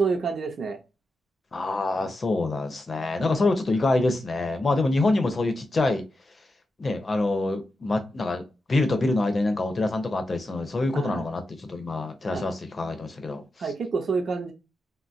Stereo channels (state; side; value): normal; both; correlation 0.88